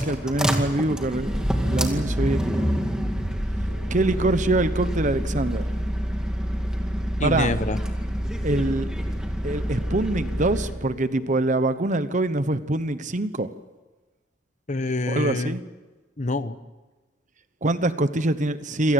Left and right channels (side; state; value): both; normal; correlation 0.66